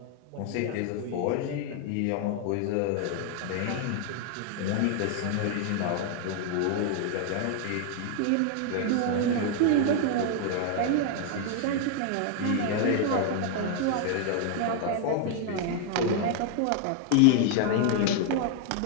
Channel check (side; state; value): both; different; correlation 0.00